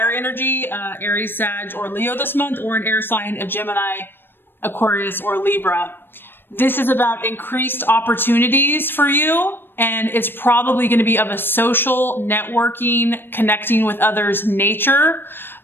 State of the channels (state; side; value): late; right; 0.099 ms